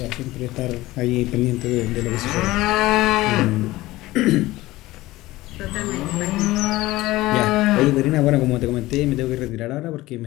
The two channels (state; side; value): quieter; right; 18.1 dB